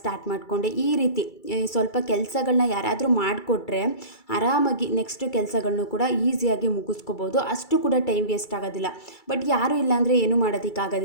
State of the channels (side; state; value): right; late; 2.3 ms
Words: ಮಾಡಿಕೊಂಡೆ. ಈ ರೀತಿ ಸ್ವಲ್ಪ ಕೆಲಸಗಳನ್ನ ಯಾರಾದರೂ ಮಾಡಿಕೊಟ್ರೆ ಆರಾಮಾಗಿ ನೆಕ್ಸ್ಟ್ ಕೆಲಸಗಳನ್ನೂ ಕೂಡ ಈಸಿಯಾಗಿ ಮುಗಿಸ್ಕೋಬೋದು. ಅಷ್ಟು ಕೂಡ ಟೈಮ್ ವೇಸ್ಟ್ ಆಗೋದಿಲ್ಲ. ಬಟ್ ಯಾರೂ ಇಲ್ಲಾಂದರೆ ಏನೂ